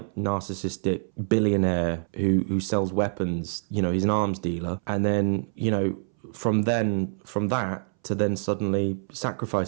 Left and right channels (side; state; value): left; silent; 61 dB below the other